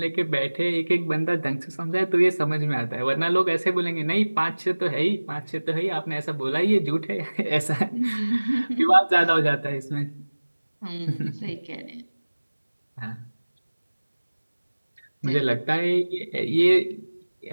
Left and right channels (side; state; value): both; inverted; correlation -1.00